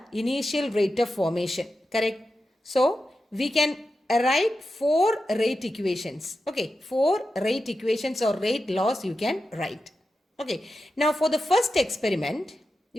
initial rate of formation, correct? So we can write 4 rate equations. Okay, 4 rate equations or rate laws you can write. Okay, now for the first experiment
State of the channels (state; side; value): normal; both; correlation 0.90